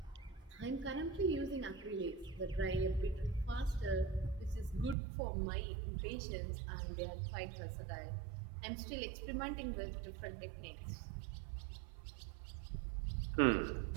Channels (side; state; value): left; drops out; at 5.0 s